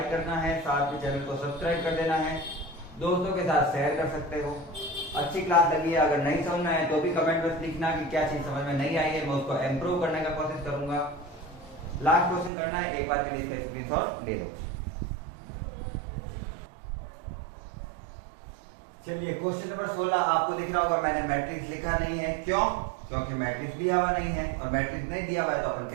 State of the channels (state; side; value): drops out; left; at 12.5 s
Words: करना है, साथ में चैनल को सब्सक्राइब कर देना है, दोस्तों के साथ शेयर कर सकते हो। अच्छी क्लास लगी है, अगर नहीं समझना है तो भी कमेंट में लिखना कि क्या चीज समझ में नहीं आई है, मैं उसको इम्प्रूव करने का कोशिश करूंगा। लास्ट क्वेश्चन करना है, एक बार के लिए इसका स्क्रीनशॉट ले लो। चलिए क्वेश्चन नंबर 16 आपको दिख रहा होगा, मैंने मैट्रिक्स लिखा नहीं है। क्यों? क्योंकि मैट्रिक्स दिया हुआ नहीं है, और मैट्रिक्स नहीं दिया हुआ है तो अपन